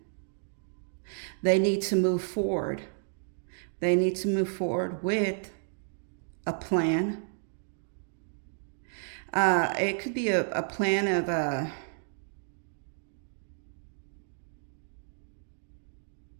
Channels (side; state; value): left; silent; digital silence